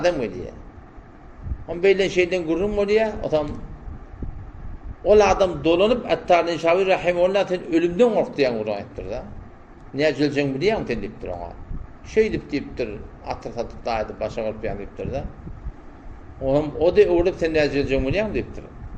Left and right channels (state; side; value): identical; both; correlation 1.00